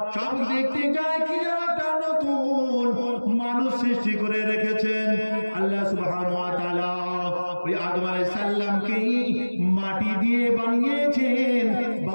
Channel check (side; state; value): both; inverted; correlation -1.00